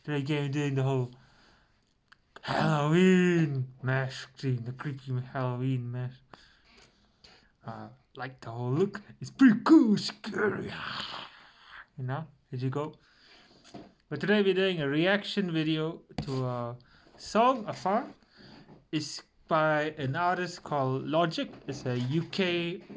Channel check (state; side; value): identical; both; correlation 1.00